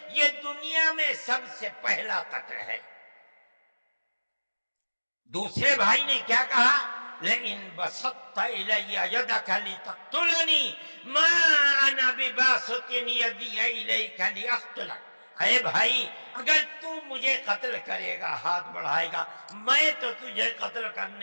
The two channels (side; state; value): both; inverted; correlation -1.00